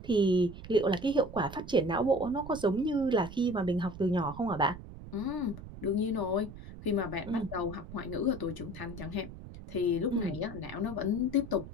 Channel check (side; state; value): right; noise; rumble, 13 dB below the sound